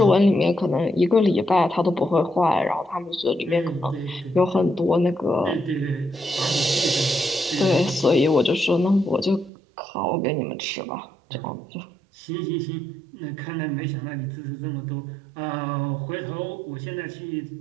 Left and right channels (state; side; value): drops out; left; at 9.5 s